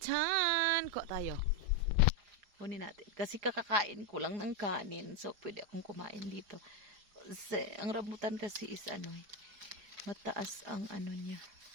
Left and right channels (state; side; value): late; left; 4.8 ms